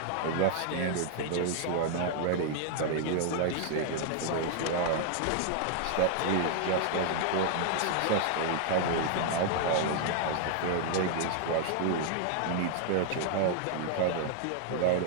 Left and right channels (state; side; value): different; both; correlation 0.00